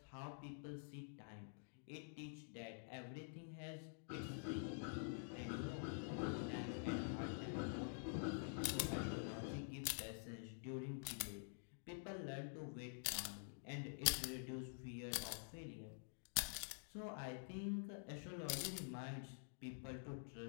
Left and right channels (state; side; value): silent; right; digital silence